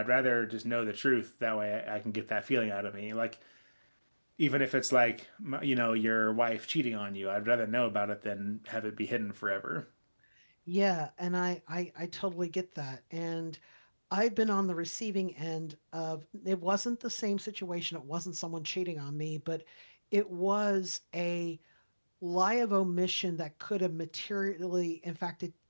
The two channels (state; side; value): inverted; both; correlation -1.00